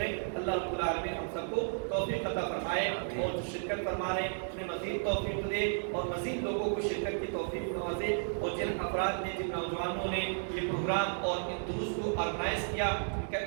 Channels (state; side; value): silent; left; digital silence